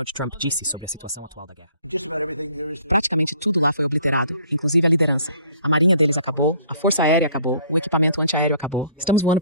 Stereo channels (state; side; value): inverted; both; correlation -0.57